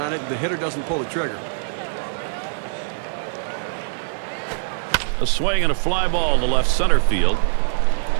it. The hitter doesn't pull the trigger. A swing and a fly ball to left center field.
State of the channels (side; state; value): left; silent; digital silence